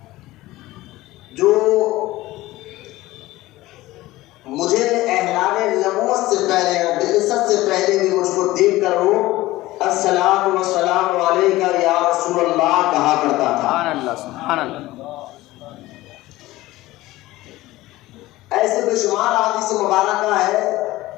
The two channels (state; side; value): quieter; right; 17.7 dB